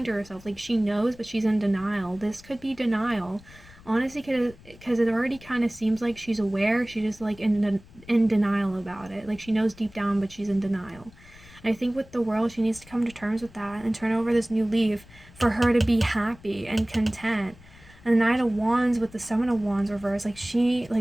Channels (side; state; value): left; noise; rumble, 23 dB below the sound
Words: to herself. Like, she knows, but she's in denial. This could be denial. Honestly, because it already kind of seems like she's aware, she's just, like, in denial about it. Like, she knows deep down, but she's in denial. And I think with the World, she needs to come to terms with that and turn over this new leaf for her to be happy and content. And the Knight of Wands with the Seven of Wands reverse, like, she,